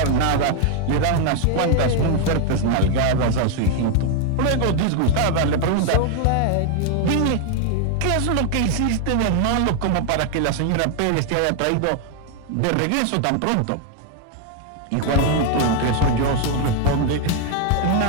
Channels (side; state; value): both; different; correlation 0.00